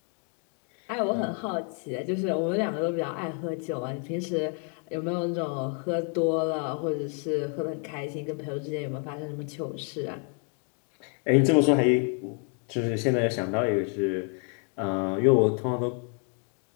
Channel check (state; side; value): quieter; right; 38.0 dB